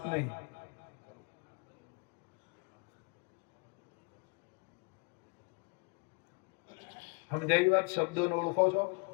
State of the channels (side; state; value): right; quieter; 31.1 dB